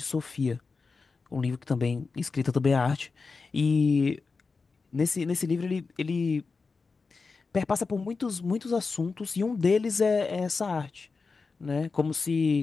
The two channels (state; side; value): quieter; right; 4.4 dB